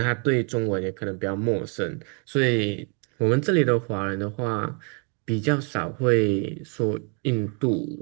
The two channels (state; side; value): quieter; left; 37.2 dB